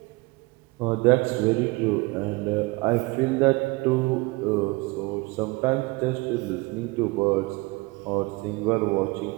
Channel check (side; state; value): left; quieter; 24.2 dB